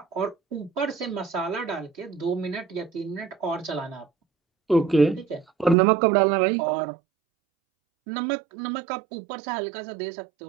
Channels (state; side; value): drops out; left; at 5.8 s